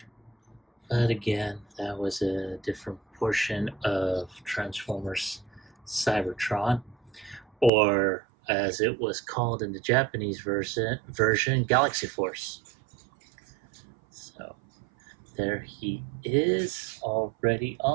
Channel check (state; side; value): drops out; left; at 7.7 s